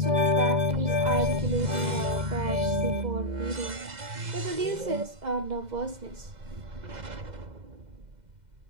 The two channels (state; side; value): late; left; 2.0 ms